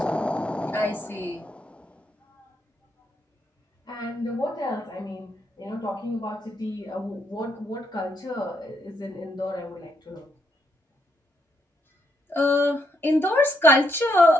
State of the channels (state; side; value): normal; both; correlation 0.77